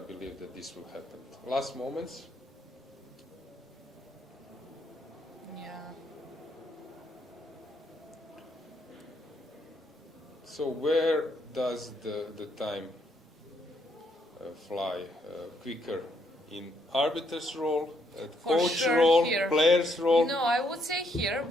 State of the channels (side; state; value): both; normal; correlation 0.73